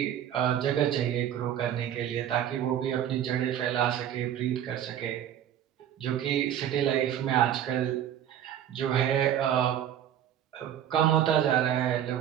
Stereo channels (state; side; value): quieter; left; 10.5 dB